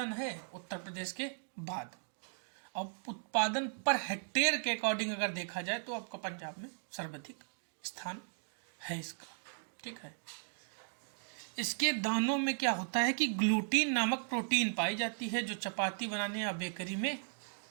है उत्तर प्रदेश के बाद। और उत्पादन पर हेक्टेयर के अकॉर्डिंग अगर देखा जाए तो आपका पंजाब में सर्वाधिक स्थान है इसका। ठीक है। इसके दानों में क्या होता है कि ग्लूटीन नामक प्रोटीन पाई जाती है, जो चपाती बनाने या बेकरी में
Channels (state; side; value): silent; left; digital silence